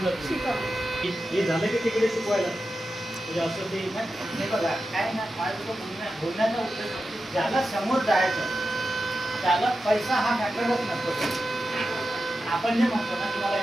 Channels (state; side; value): normal; both; correlation 0.91